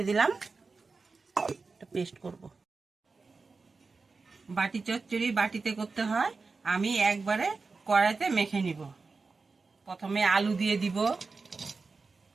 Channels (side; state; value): left; quieter; 4.2 dB